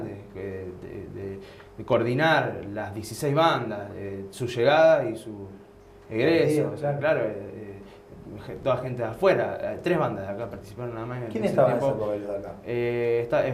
de coordinar las 16 bandas, su llegada y su egreso, Claro. claro, toda gente de afuera, 3 bandas de acá participaron nada más. ¿Quién ese estaba en tiempo. esa época de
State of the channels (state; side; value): identical; both; correlation 1.00